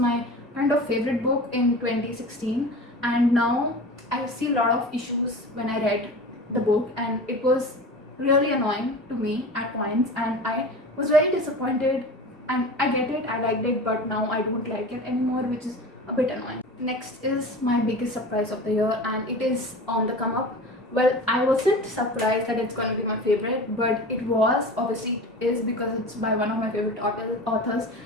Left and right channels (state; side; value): normal; both; correlation 0.34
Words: kind of favorite book in 2016, and now I see a lot of issues when I read the book, and it was really annoying to me at points, and I was very disappointed. And I get it, I liked it, but now I don't like it anymore, which is a bit annoying. Next is my biggest surprise of the year, and it is on the come up. Well, I wasn't surprised that it's going to be my favorite, but it was. Obviously it is because it's by one of my favorite authors,